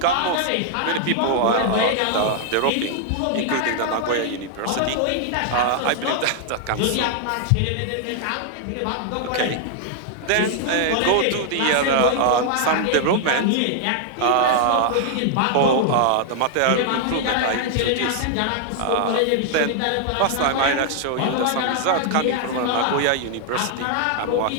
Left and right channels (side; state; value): both; different; correlation 0.00